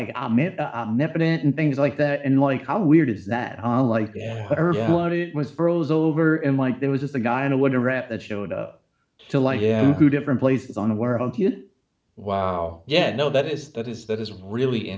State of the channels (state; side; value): identical; both; correlation 1.00